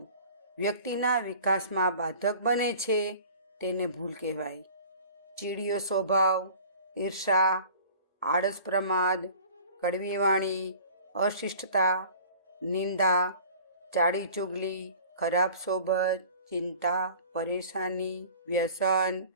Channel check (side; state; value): both; inverted; correlation -0.45